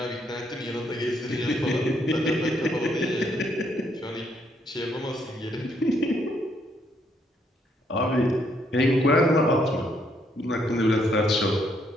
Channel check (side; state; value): both; normal; correlation 0.72